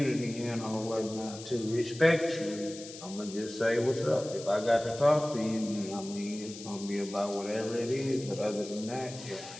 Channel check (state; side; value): noise; left; hiss, 14 dB below the sound